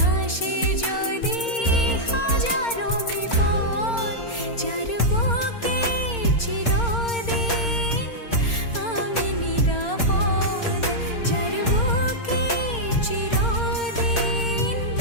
আসে যদি হাজারো বিপদ, যার বুকে চিরদিন আমি নিরাপদ, যার বুকে চিরদিন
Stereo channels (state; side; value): late; right; 4.3 ms